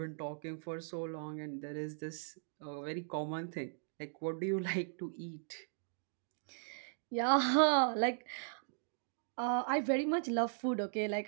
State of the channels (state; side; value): silent; left; digital silence